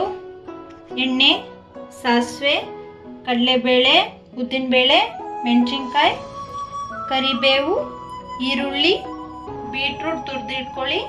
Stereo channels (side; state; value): both; identical; correlation 1.00